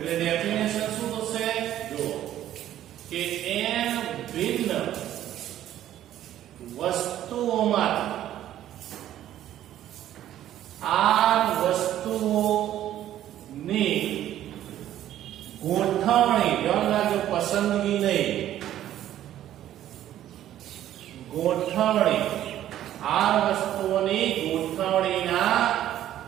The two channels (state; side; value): quieter; left; 12.2 dB